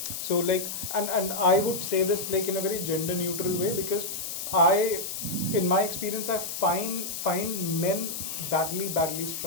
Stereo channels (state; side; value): noise; left; hiss, 5 dB below the sound